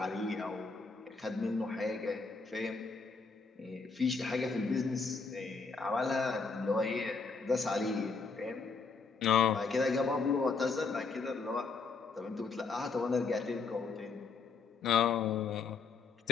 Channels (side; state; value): right; quieter; 4.6 dB